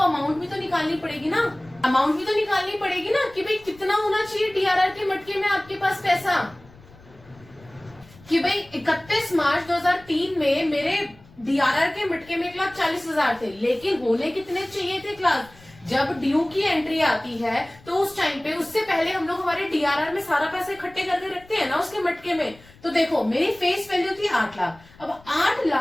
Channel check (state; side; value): noise; left; rumble, 24 dB below the sound